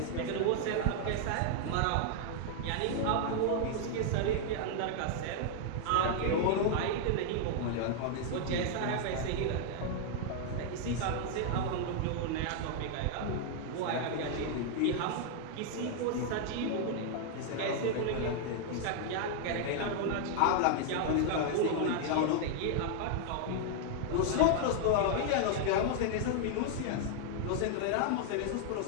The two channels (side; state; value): both; different; correlation 0.00